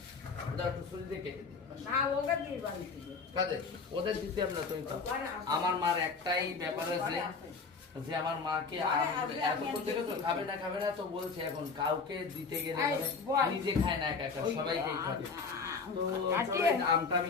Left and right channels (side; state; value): right; quieter; 4.7 dB